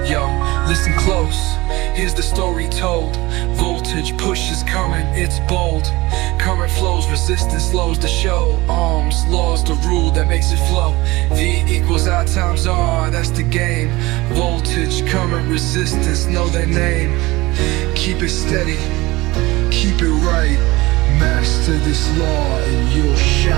Yo, listen close, here's the story told. Voltage pushes current, it's bold. Current flows, resistance slows the show. Ohms, laws, the rule that makes it flow. V equals I times R, that's the game. Voltage, current, resistance, know their name. Keep it steady, keep it right. Master this law and you'll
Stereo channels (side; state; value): left; quieter; 20.8 dB